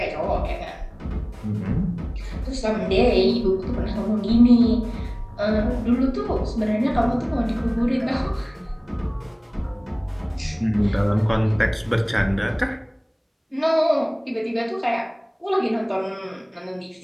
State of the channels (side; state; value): both; identical; correlation 1.00